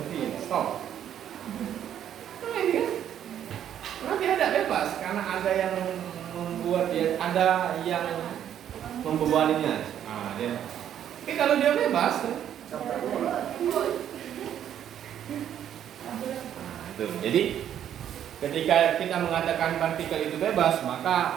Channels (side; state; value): left; quieter; 10.1 dB